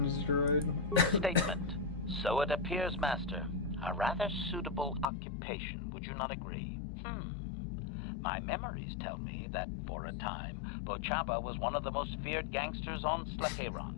droid? Statement. So it appears, Master. A rather suitable occupation, would you not agree? My memories tell me that, for a time, Bochaba was one of the most feared gangsters on Slaheron.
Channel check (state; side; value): drops out; right; at 5.1 s